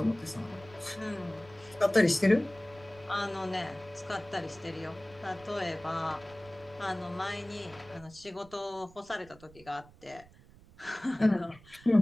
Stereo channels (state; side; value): noise; right; rumble, 23 dB below the sound